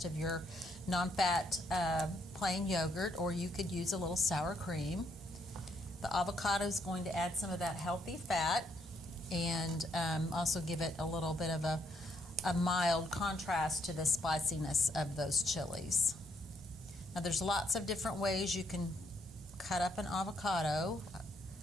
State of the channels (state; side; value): normal; both; correlation 0.73